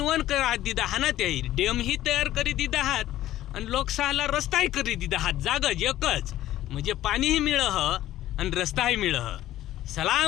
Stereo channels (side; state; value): right; quieter; 14.0 dB